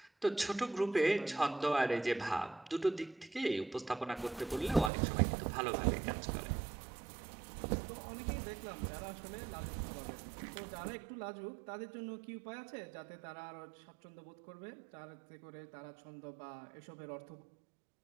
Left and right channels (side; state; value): left; drops out; at 4.9 s